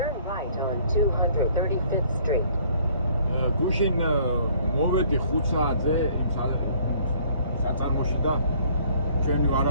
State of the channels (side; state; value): both; inverted; correlation -0.59